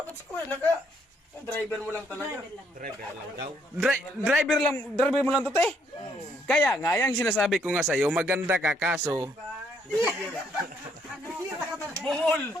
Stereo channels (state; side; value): normal; both; correlation 0.70